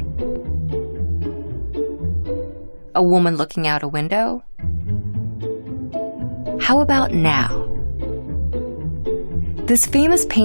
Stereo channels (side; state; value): both; inverted; correlation -1.00